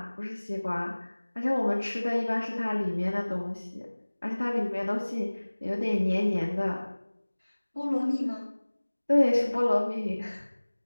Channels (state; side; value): inverted; both; correlation -1.00